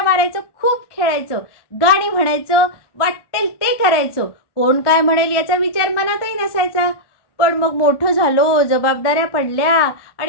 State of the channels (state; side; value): late; right; 1.1 ms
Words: मारायचो, खूप खेळायचो, गाणी म्हणायचो, वाटेल ते करायचो. कोण काय म्हणेल याचा विचार मनातही नसायचा. पण मग मोठं झालो, जबाबदाऱ्या पडल्या